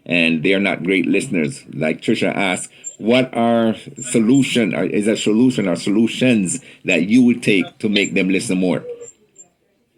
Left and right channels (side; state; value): both; identical; correlation 1.00